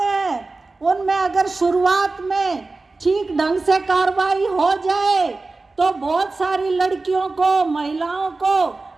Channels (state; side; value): quieter; left; 3.6 dB